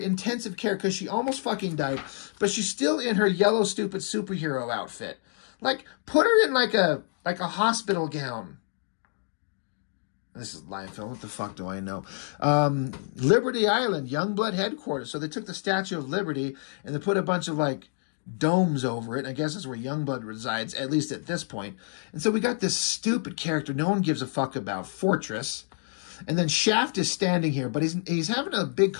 care because she almost fucking died. But she's still in her yellow, stupid superhero outfit. Like, put her in like a hospital gown. This is live film. What the fuck do I know? Liberty Island, Youngblood headquarters. So they took the Statue of Liberty and they put a bunch of like domes over it. I guess that's where Youngblood resides, at least at this point. And so we got this stupid character no one gives a fuck about, Fortress. And then Shaft is standing here, but he's having a big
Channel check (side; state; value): right; silent; 60 dB below the other